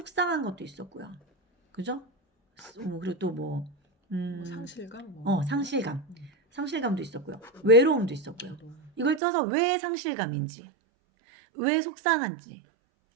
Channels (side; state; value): left; drops out; at 9.2 s